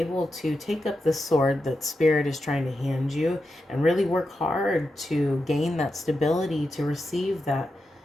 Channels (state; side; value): normal; both; correlation 0.88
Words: to take up the sword that Spirit is trying to hand you and really work hard to gain that stability, to receive that